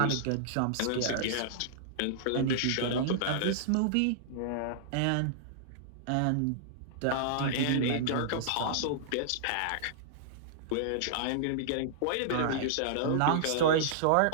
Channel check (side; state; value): both; different; correlation -0.02